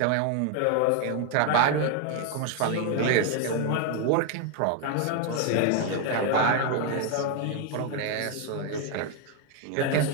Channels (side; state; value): both; different; correlation 0.01